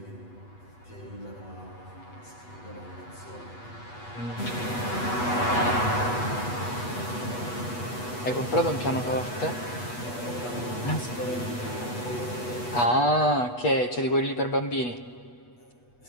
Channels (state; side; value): late; right; 8.2 ms